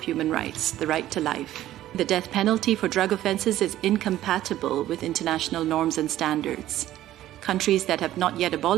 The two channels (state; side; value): quieter; left; 13.6 dB